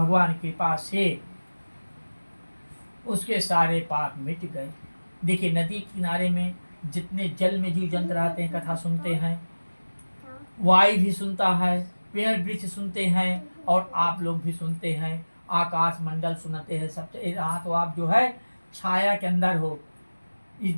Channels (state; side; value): inverted; both; correlation -1.00